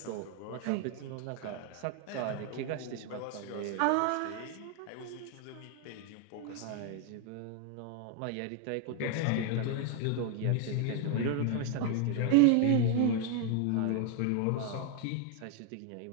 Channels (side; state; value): both; different; correlation 0.00